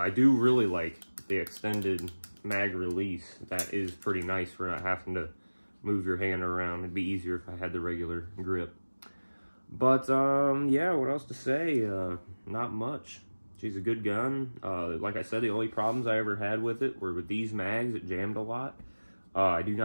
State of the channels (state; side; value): inverted; both; correlation -1.00